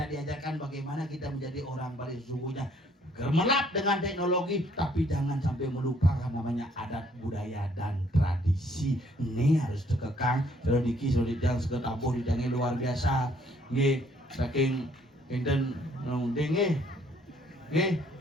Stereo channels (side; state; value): both; normal; correlation 0.64